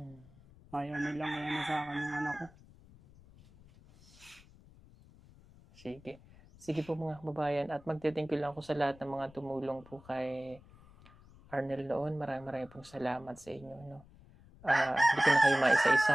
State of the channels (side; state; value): left; noise; rumble, 24 dB below the sound